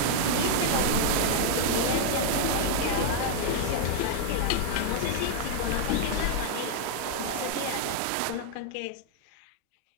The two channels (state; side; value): different; both; correlation 0.00